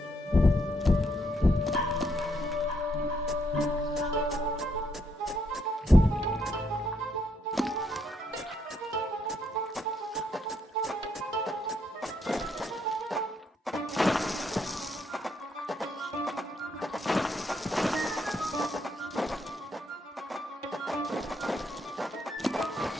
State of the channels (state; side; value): normal; both; correlation 0.75